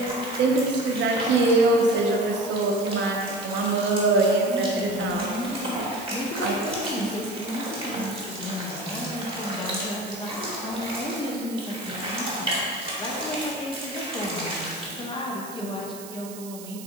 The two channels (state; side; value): noise; right; hiss, 15 dB below the sound